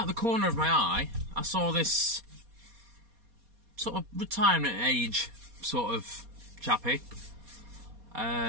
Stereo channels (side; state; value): left; late; 4.2 ms